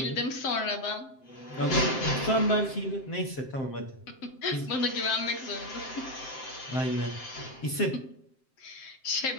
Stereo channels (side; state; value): right; late; 7.7 ms